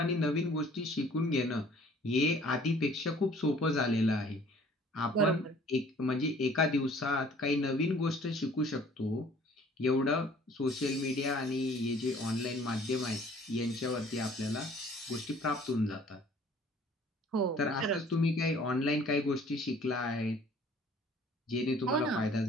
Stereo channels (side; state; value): both; normal; correlation 0.54